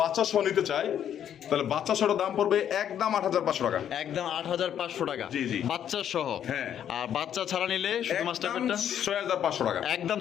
বাচ্চা সহ নিতে চায় তাহলে বাচ্চা সহটার দাম পড়বে একদম 8,500 টাকা। একদম 8,500 টাকা। জি, জি। বাচ্চা সহ। হ্যাঁ। আর বাচ্চা ছাড়া নিলে শুধু মাস্টার একদম পেটটা 6,500 টাকা। একদম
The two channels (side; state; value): right; quieter; 9.7 dB